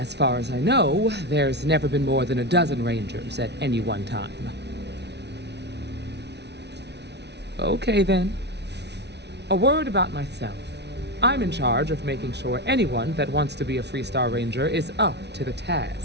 far as I know, there's never been more than a dozen Rangers at any one time. Okay then. A word about myself. I'm in charge of making sure anyone that wants to be a Freestar Ranger is up to the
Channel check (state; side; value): late; left; 0.50 ms